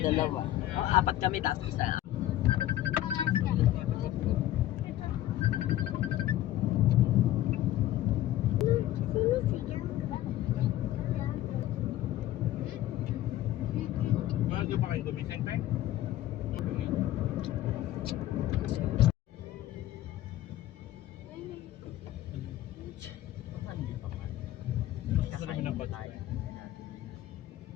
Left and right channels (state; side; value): quieter; right; 13.9 dB